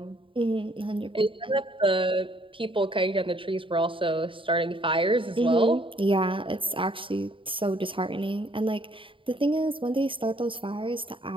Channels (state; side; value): late; left; 0.25 ms